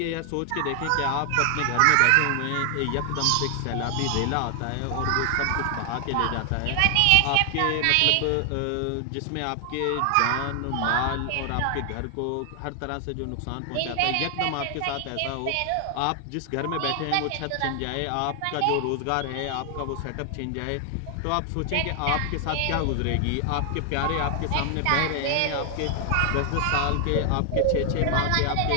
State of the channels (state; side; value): different; both; correlation 0.00